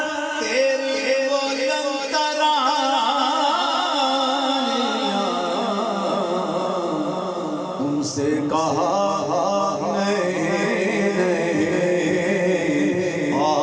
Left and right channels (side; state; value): both; identical; correlation 1.00